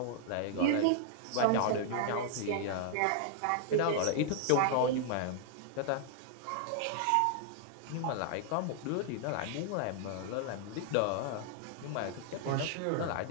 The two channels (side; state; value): both; different; correlation -0.01